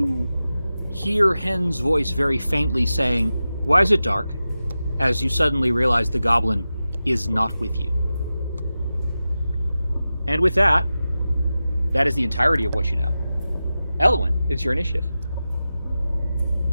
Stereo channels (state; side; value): inverted; both; correlation -0.93